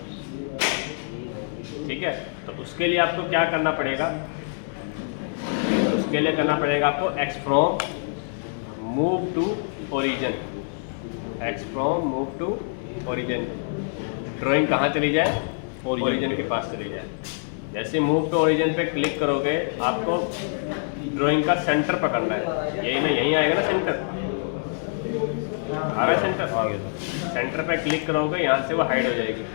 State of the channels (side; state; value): right; silent; digital silence